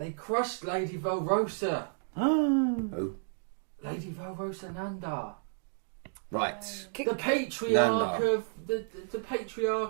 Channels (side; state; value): left; silent; digital silence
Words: crushed Lady Velrosa. Who? Lady Velrosa Nanda. Right. The patriarch Nanda. of... The